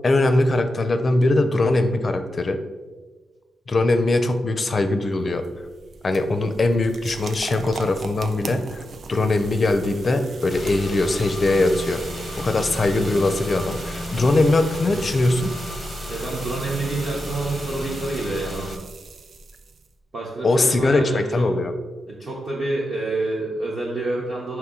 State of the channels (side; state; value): both; normal; correlation 0.89